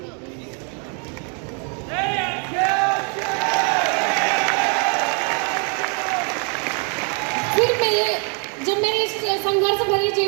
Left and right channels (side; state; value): left; quieter; 38.8 dB